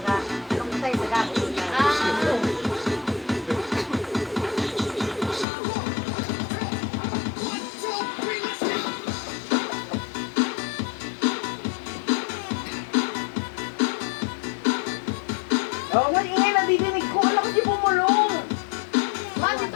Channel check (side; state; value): right; drops out; at 5.5 s